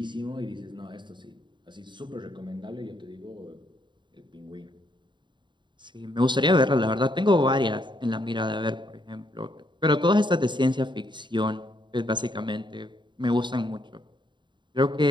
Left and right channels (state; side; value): late; left; 0.23 ms